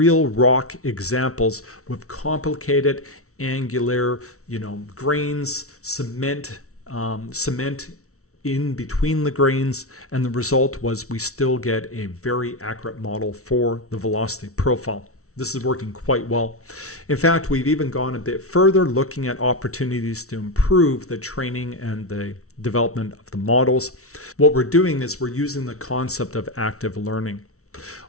rock examples with complicated angular, grains, cement in between the grains, and the result was we still get a very accurate model for the velocity profile. This is working quite well. In fact, we've even gone a bit further, looking at opportunities to improve the training and the development of the models. What we're doing is we're using the concept of active learning.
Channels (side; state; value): right; late; 0.64 ms